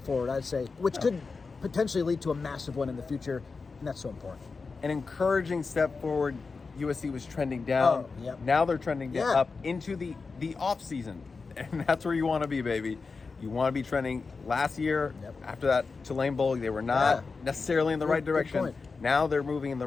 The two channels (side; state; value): right; quieter; 4.5 dB